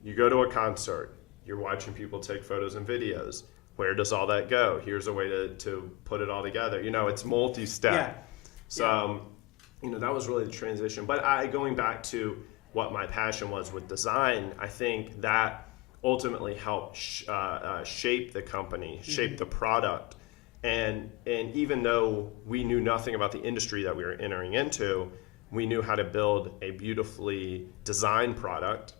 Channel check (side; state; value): right; quieter; 20.9 dB